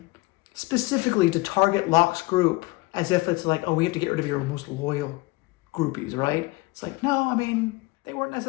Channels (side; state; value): right; quieter; 22.5 dB